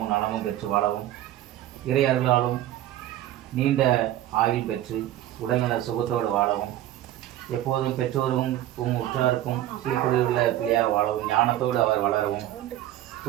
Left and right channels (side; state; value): left; quieter; 13.4 dB